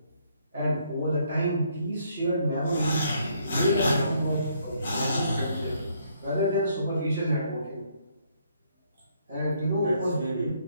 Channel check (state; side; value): inverted; both; correlation -0.69